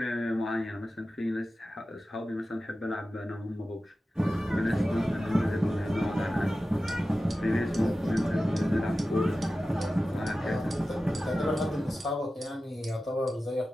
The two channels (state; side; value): normal; both; correlation 0.94